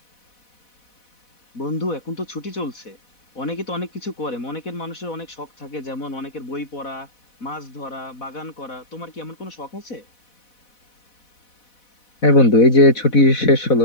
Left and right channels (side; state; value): right; late; 4.1 ms